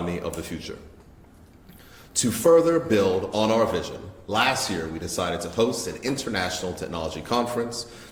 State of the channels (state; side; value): identical; both; correlation 1.00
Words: of the future. To further build on our vision, last year we decided to host an international technology conference